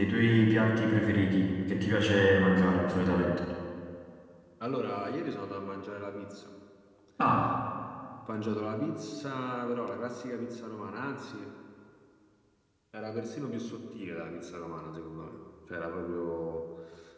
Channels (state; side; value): identical; both; correlation 1.00